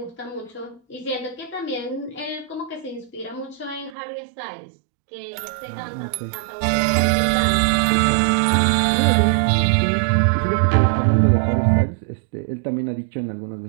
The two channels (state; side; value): drops out; left; at 4.0 s